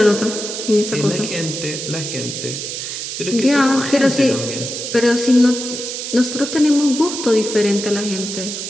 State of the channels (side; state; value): right; noise; hiss, 6 dB below the sound